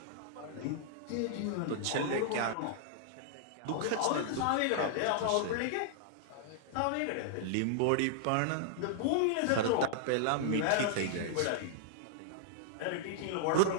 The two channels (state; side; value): different; both; correlation -0.01